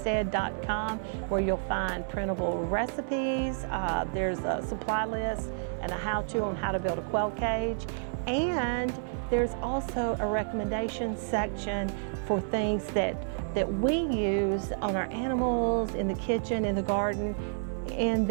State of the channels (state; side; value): silent; left; 58 dB below the other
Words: where you'll find printable recipes. There's a supply list and a how-to on how to build a quail cage. And there's also a recommendation section for things that we use on our animals, in the kitchen, in the garden, in